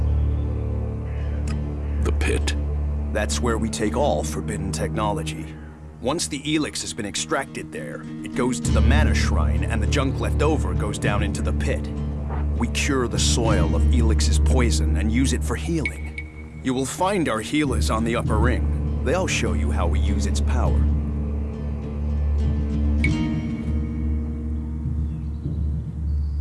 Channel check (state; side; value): identical; both; correlation 1.00